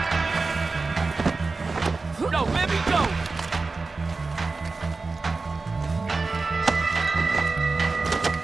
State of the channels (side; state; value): left; quieter; 3.9 dB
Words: No, let me go!